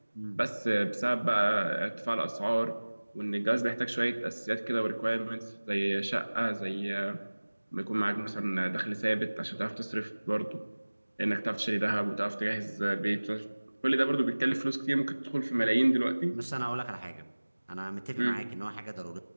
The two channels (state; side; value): inverted; both; correlation -1.00